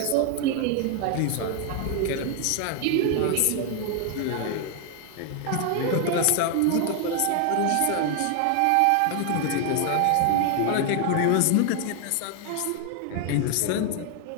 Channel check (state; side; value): different; both; correlation 0.00